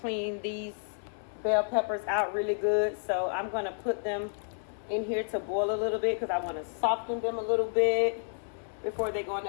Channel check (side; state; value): right; silent; 57 dB below the other